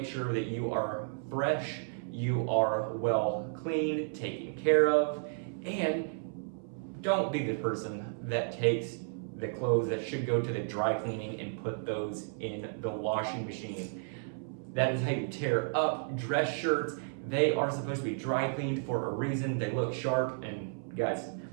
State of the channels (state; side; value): silent; left; 56 dB below the other